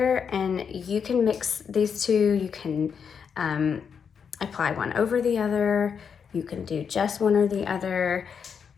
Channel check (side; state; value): right; quieter; 6.7 dB